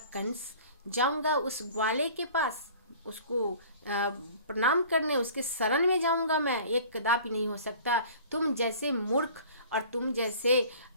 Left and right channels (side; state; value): both; inverted; correlation -0.46